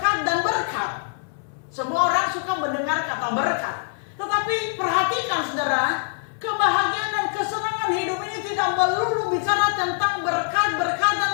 dan berkat. Semua orang suka mendengar kata berkat. Tetapi perhatikan, saudara, kebahagiaan dan kesenangan hidup ini tidak melulu bicara tentang berkat, berkat dan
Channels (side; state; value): right; silent; 63 dB below the other